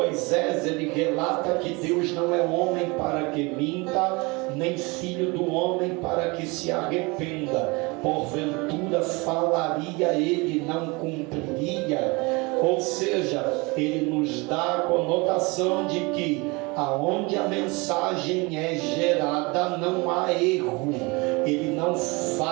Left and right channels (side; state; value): left; quieter; 26.4 dB